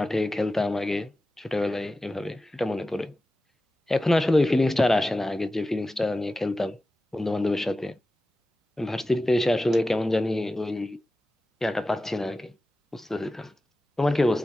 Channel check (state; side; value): normal; both; correlation 0.95